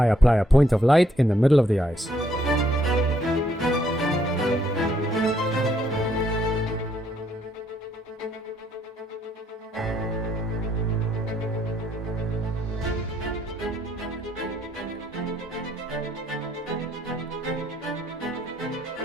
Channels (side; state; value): both; normal; correlation 0.70